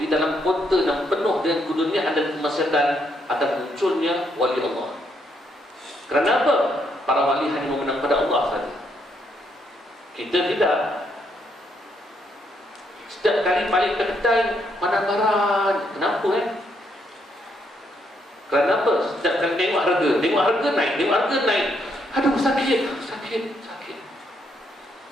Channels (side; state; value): both; normal; correlation 0.74